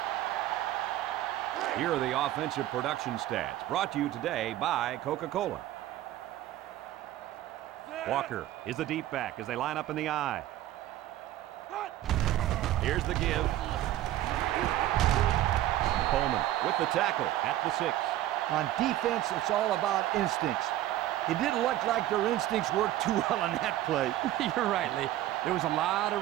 Here are the offensive production stats, brought to you today by Coca-Cola. Walker is the deep back as they line up in the I. Here's the give. Coleman with the tackle at the 6. On defense, it's all about instincts. It didn't look like their instincts worked too well on that play. You're right, Lee. There was a lot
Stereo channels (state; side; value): quieter; left; 14.1 dB